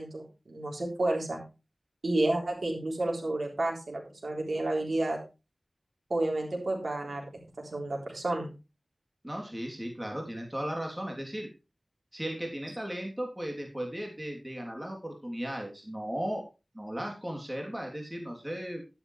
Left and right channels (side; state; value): both; normal; correlation 0.98